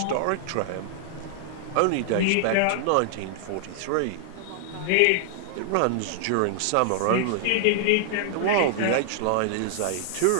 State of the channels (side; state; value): both; different; correlation -0.01